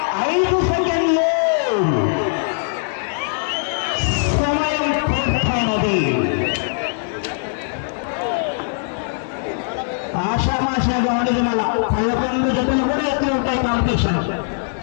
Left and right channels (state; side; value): silent; right; 62 dB below the other